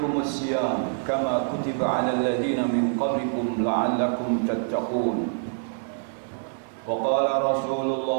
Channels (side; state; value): left; silent; 61 dB below the other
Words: الصيام كما كتب على الذين من قبلكم لعلكم تتقون وقال رسول